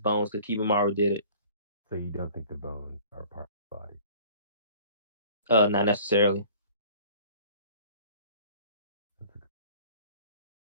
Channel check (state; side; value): inverted; both; correlation -0.49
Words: bones because Kimimaro did it. So you don't think the bones are part of the body? Not necessarily.